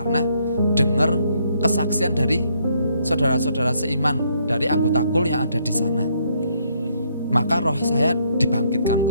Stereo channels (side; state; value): both; inverted; correlation -0.70